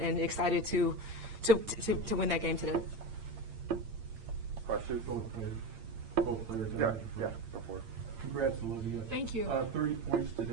excited to win that game today. Questions? Both players. Yeah, before. Congrats, Olivia. Thank you. 30 points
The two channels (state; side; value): late; left; 8.8 ms